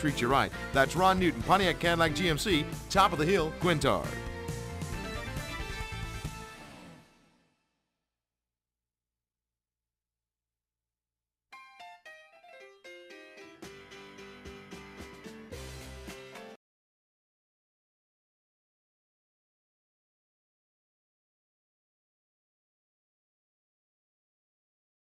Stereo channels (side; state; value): both; identical; correlation 1.00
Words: you right. That's Ron Newton Pontiac Cadillac GMC, top of the hill, Quintard.